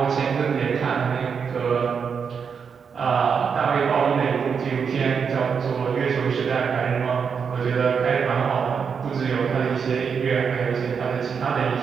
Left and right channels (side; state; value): left; quieter; 6.4 dB